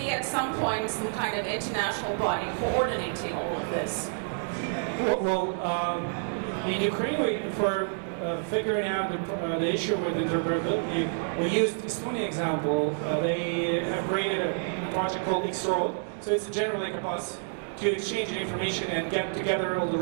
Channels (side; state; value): left; silent; digital silence